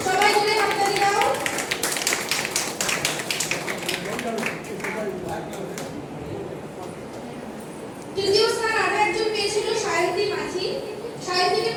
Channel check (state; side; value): identical; both; correlation 1.00